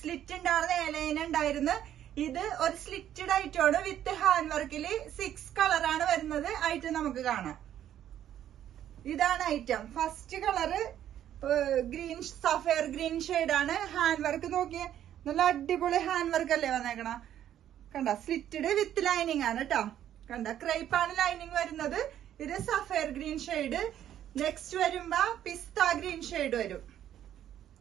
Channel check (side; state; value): left; quieter; 11.0 dB